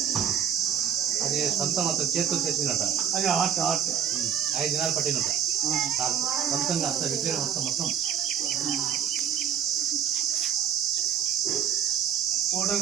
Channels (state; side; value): quieter; left; 8.9 dB